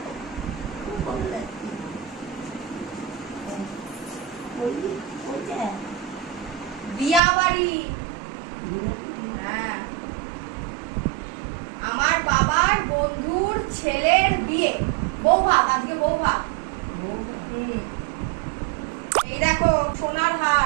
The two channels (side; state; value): left; drops out; at 7.2 s